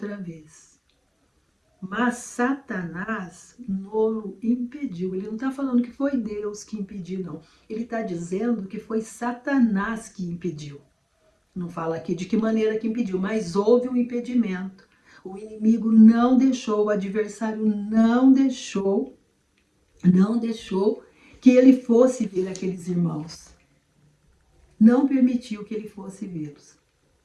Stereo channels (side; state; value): both; identical; correlation 1.00